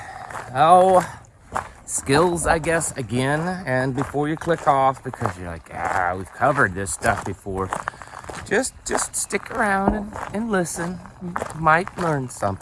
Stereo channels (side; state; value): both; identical; correlation 1.00